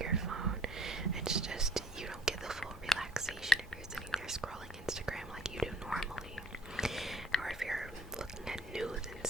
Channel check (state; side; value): normal; both; correlation 0.57